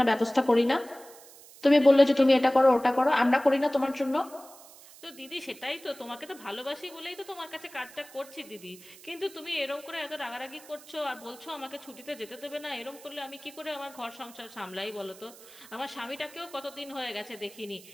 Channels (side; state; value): right; noise; hiss, 20 dB below the sound